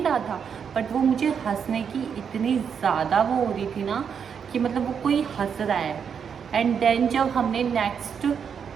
रहा था बट वो मुझे हंसने की इतनी ज़्यादा वो हो रही थी ना कि मतलब वो कोई हंस रहा है। एंड देन जब हमने नेक्स्ट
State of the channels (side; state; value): left; quieter; 7.1 dB